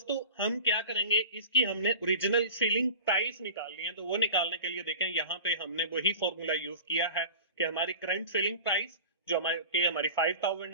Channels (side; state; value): both; inverted; correlation -0.35